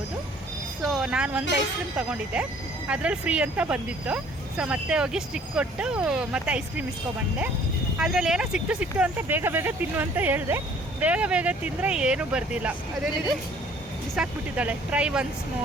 ಸೊ ನಾನು ಒಂದು ಐಸ್ ಕ್ರೀಮ್ ತೊಗೊಂಡಿದ್ದೆ, ಅದರಲ್ಲಿ ಫ್ರೀ ಅಂತ ಬಂದಿತ್ತು. ಸೊ ಮತ್ತೆ ಹೋಗಿ ಸ್ಟಿಕ್ ಕೊಟ್ಟು ಮತ್ತೆ ಐಸ್ ಕ್ರೀಮ್ ಇಸ್ಕೊಬಂದೆ. ಅದರಲ್ಲಿ ಏನೋ ಸಿಕ್ತು ಅಂತ ಬೇಗ ತಿನ್ನು ಅಂತ ಹೇಳಿದೆ. ಬೇಗ ತಿಂದರೆ ಏನೂ ಬರ್ದಿಲ್ಲ. ಅದೇನಿದೆ ಬಿಸಾಕ್ಬಿಟ್ಟಿದ್ದಾಳೆ. ಟ್ರೈ ಒನ್ಸ್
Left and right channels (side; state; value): both; normal; correlation 0.56